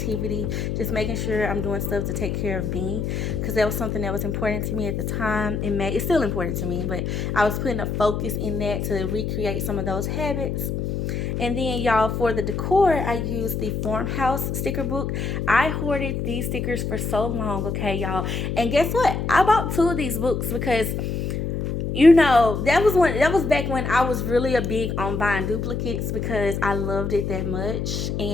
just making sure I'm doing stuff to take care of me, because that was something that was important to me at the time. It's still important to me, but I was putting a focus in that to recreate some of those habits. And then, y'all, for the decor, I used the Farmhouse sticker book. I hoarded these stickers for so long, okay, y'all. And guess what? I bought 2 of these books because, you know, that was back when I was really a big on buying duplicates because I loved it that much.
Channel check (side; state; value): left; noise; hum, 2 dB below the sound